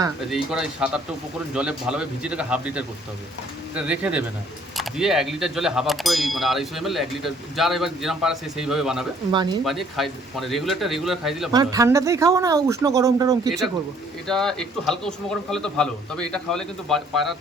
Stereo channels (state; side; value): normal; both; correlation 0.61